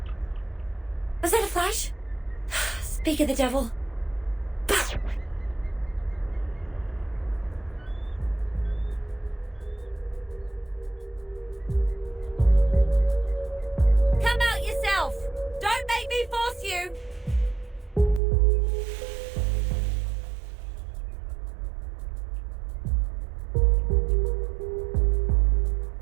Was that a flash? Speak of the devil. Come out yourself! Don't make me force you!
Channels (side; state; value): left; drops out; at 18.2 s